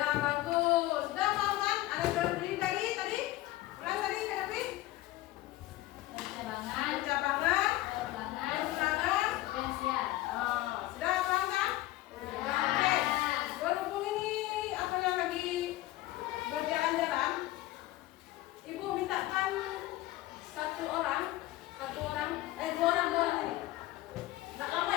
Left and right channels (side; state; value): right; quieter; 16.9 dB